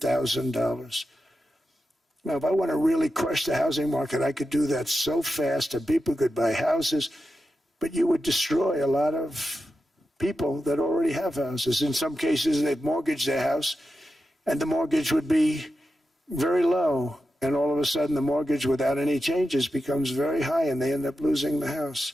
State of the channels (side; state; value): both; normal; correlation 0.90